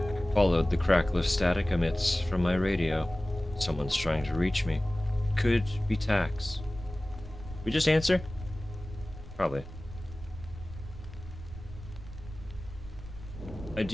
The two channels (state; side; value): noise; right; rumble, 13 dB below the sound